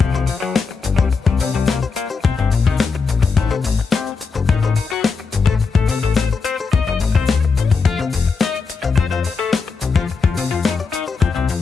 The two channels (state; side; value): quieter; right; 4.8 dB